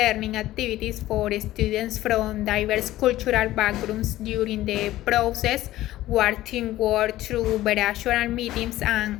activities for students from diverse cultural backgrounds. During the process, our team worked through virtual meetings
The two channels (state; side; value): quieter; right; 15.4 dB